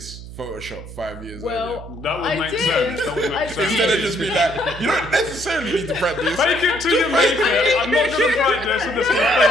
Photoshop 5 years Well, That would I make did. sense. That would I make sense. Instead of did. just be like, you don't necessarily need to practice. Fake it till you make it. I'm not going to practice. I'm just going to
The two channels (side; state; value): right; noise; hum, 13 dB below the sound